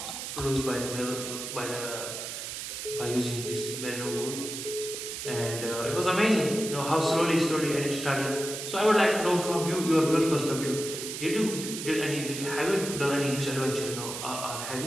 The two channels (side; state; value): right; noise; hiss, 6 dB below the sound